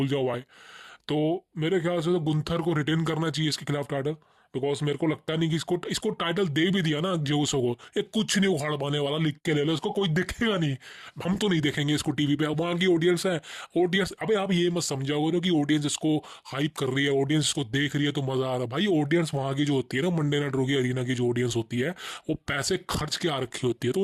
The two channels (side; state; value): both; identical; correlation 1.00